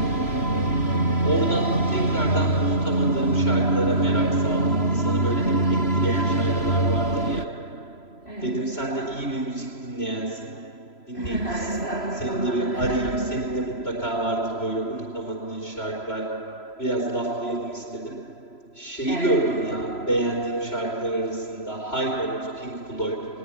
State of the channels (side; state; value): right; late; 3.0 ms